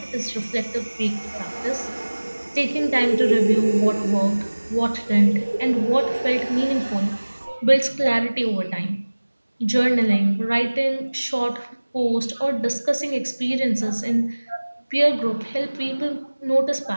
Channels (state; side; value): inverted; both; correlation -1.00